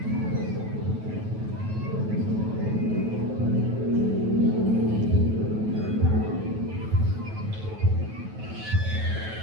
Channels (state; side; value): late; left; 9.3 ms